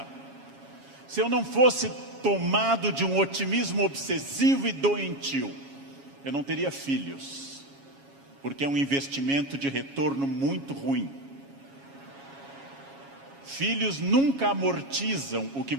Se eu não fosse tomado de um otimismo obsessivo e doentio, eu não teria filhos, porque é um investimento de retorno muito ruim. Filhos nunca amortizam o que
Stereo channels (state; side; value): late; left; 7.3 ms